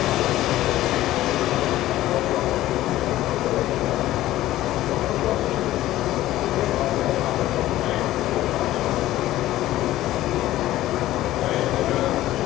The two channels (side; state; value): right; quieter; 15.0 dB